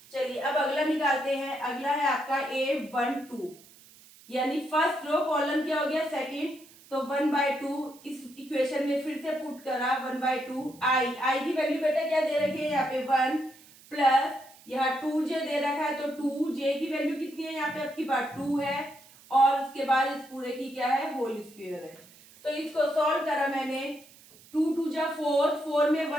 चलिए अब अगला निकालते हैं। अगला है आपका A12, यानी फर्स्ट रो कॉलम क्या हो गया सेकंड, तो 1/2 इस इक्वेशन में फिर से पुट करा 1/2 आई की वैल्यू बेटा क्या दे रखी है यहाँ पे 1 प्लस यहाँ 2j दे रखा है, तो 2j की वैल्यू कितनी है यहाँ पे आपकी बात 2 है, और उसके बाद इस पूरे की क्या है होल स्क्वायर है। तो इसको सॉल्व करा मैंने, 2 2 जा 4 में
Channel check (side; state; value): right; noise; hiss, 24 dB below the sound